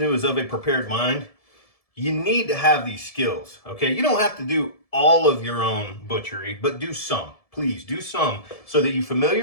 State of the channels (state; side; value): late; right; 1.7 ms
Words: who is of a prepared mind, you need to have these skills, okay? You don't have to do all of your own butchery, but do some. Please do some so that you